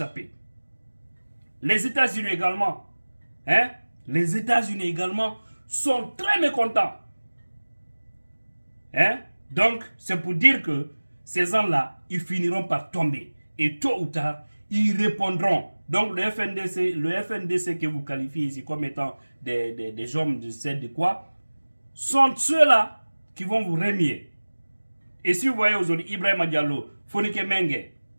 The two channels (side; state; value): both; inverted; correlation -1.00